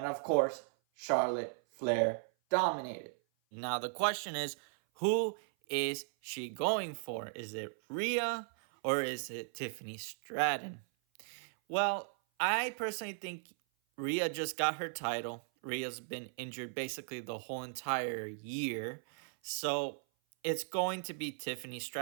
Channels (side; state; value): left; silent; 53 dB below the other